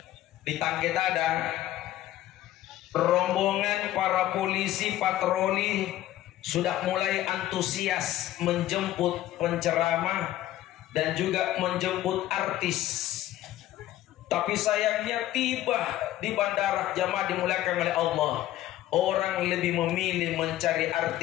di Tangketada, rombongan para polisi patroli sudah mulai antusias menjemput penceramah dan juga menjemput artis. Tapi sayangnya tiba di bandara, jamaah dimuliakan oleh Allah, orang lebih memilih mencari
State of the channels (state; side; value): quieter; right; 14.1 dB